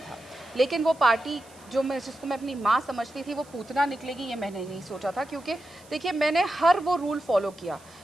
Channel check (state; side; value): noise; right; hiss, 25 dB below the sound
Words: था, लेकिन वो पार्टी जिसको मैं अपनी माँ समझती थी वो पूतना निकलेगी, ये मैंने नहीं सोचा था। क्योंकि देखिए, मैंने हर वो रूल फॉलो किया।